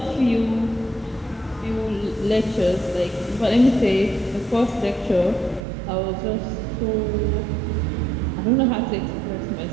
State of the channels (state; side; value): drops out; left; at 5.6 s